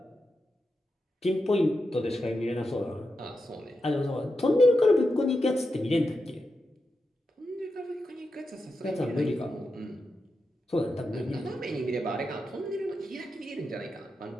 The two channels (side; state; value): both; normal; correlation 0.88